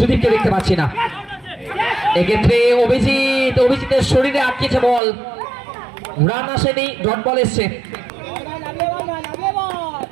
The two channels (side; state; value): left; drops out; at 5.0 s